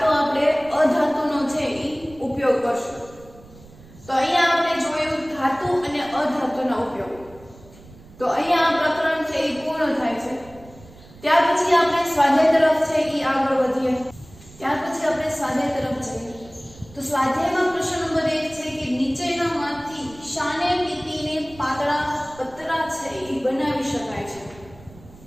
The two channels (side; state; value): right; noise; rumble, 22 dB below the sound